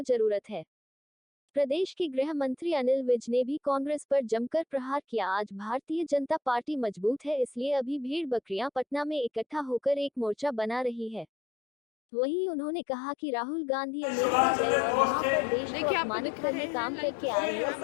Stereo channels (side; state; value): right; drops out; at 11.2 s